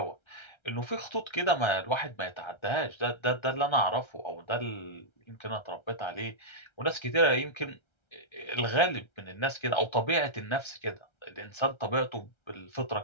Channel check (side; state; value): right; late; 1.3 ms